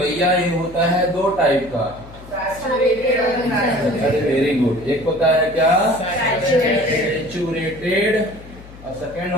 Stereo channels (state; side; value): noise; left; hum, 18 dB below the sound